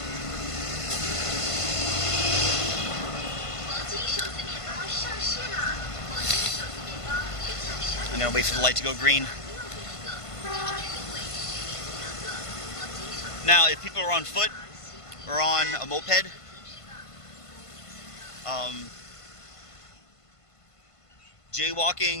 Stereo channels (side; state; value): right; late; 1.5 ms